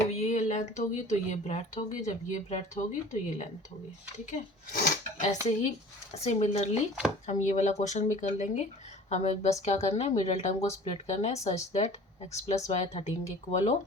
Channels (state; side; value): normal; both; correlation 0.44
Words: ये लेंथ होगी तो ये ब्रेड्थ होगी, जब ये ब्रेड्थ होगी तो ये लेंथ होगी, ठीक है। ऐसे ही सिमिलरली हम ये वाला क्वेश्चन भी कर लेंगे। हमें बस क्या करना है, मिडिल टर्म को स्प्लिट करना है such that x plus y 13 के इक्वल हो